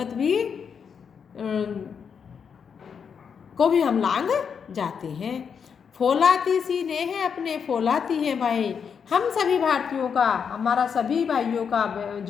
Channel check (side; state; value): right; quieter; 6.7 dB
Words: भी को भी हम लांग जाते हैं। फौलाती सी ने है अपने, फौलाती हैं भाई। हम सभी भारतीयों का, हमारा सभी भाइयों का